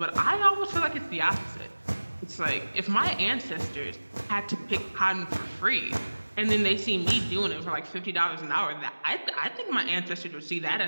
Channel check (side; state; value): both; inverted; correlation -1.00